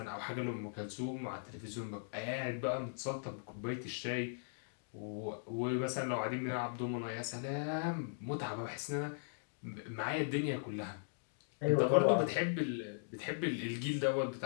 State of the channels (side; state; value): right; silent; digital silence